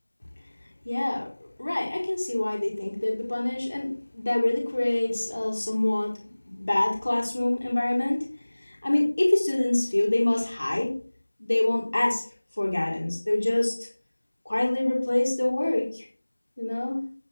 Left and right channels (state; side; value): inverted; both; correlation -1.00